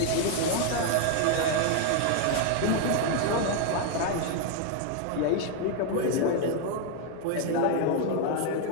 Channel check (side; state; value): both; different; correlation 0.01